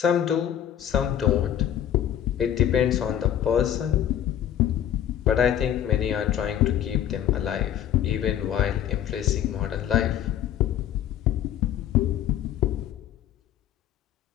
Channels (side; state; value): right; quieter; 10.5 dB